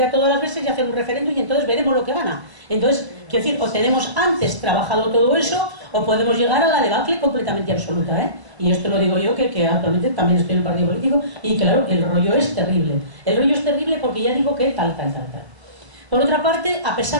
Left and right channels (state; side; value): late; left; 1.0 ms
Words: a todas las veces y hacer un referéndum y entonces veremos lo que gana. Entonces, quiero decir, o tenemos antes trabajado todo eso, o podemos llegar a la debacle completamente absoluta, ¿eh? Y esto lo digo yo, que actualmente también estoy en el partido político, y claro, el rollo es terrible. El rollo es terrible porque ya digo que tal. Por otra parte, a